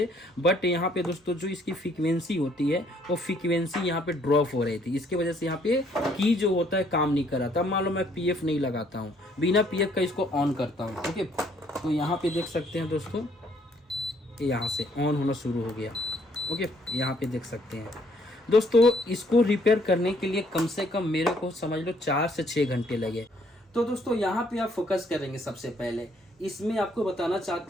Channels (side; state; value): both; normal; correlation 0.66